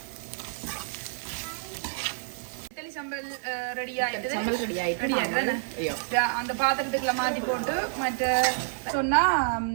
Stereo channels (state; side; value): silent; left; digital silence